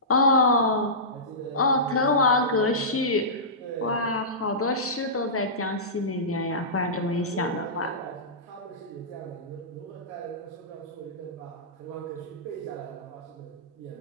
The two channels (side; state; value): both; normal; correlation -0.19